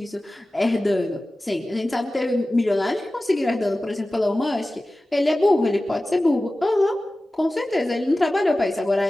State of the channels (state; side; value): normal; both; correlation 0.96